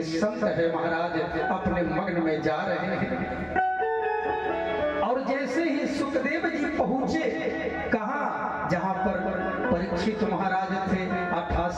संत है महाराज अपने मग्न में जा रहे हैं। और जैसे ही सुखदेव जी पहुंचे, कहा जहां पर परीक्षित महाराज थे,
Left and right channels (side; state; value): both; identical; correlation 1.00